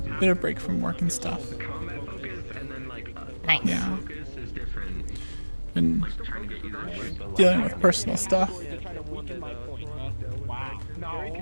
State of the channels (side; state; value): both; inverted; correlation -1.00